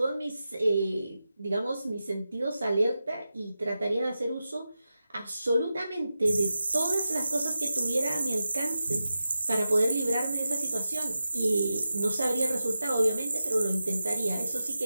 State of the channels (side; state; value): both; inverted; correlation -0.92